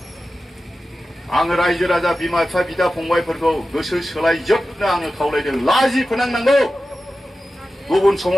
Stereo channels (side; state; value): both; normal; correlation 0.94